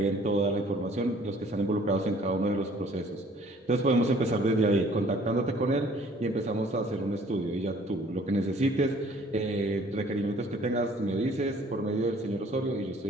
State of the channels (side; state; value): both; normal; correlation 0.56